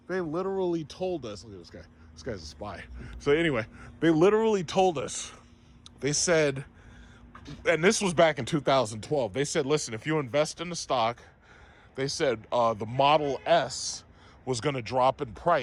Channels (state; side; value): identical; both; correlation 1.00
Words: they literally told us, look at this guy. This guy's a spy. So anyway, they literally told us, they said, and this was back in 2012, they said, listen, if you invest in the stock, they said the Model S was going to drop in